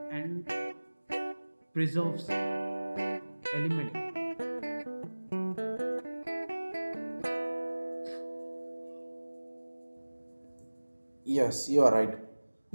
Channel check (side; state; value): both; inverted; correlation -1.00